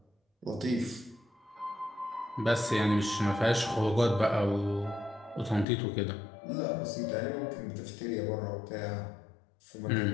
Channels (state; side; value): drops out; right; at 5.7 s